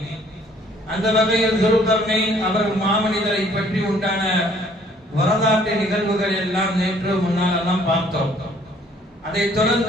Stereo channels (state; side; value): normal; both; correlation 0.60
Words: அந்த வகையில் துல்கர்னைன் அவர் மாமனிதரை பற்றி உண்டான வரலாற்று நிகழ்வுகள் எல்லாம் நேற்று முன்னாலெல்லாம் பார்த்தோம். அதைத்